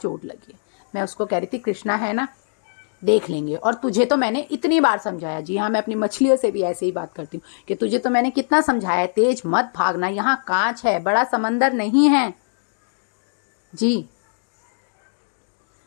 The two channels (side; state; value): right; silent; digital silence